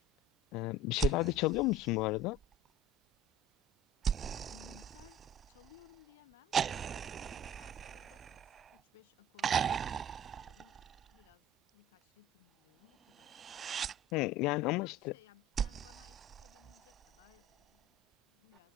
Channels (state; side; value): normal; both; correlation 0.43